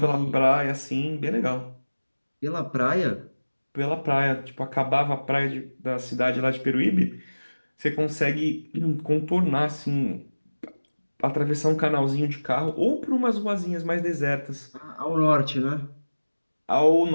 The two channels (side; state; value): both; inverted; correlation -1.00